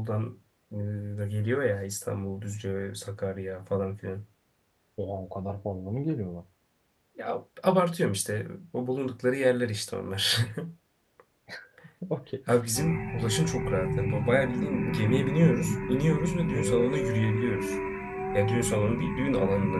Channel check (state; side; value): identical; both; correlation 1.00